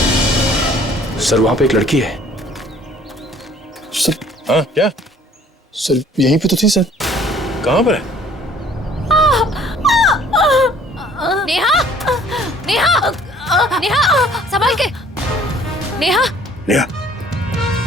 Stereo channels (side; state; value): both; normal; correlation 0.55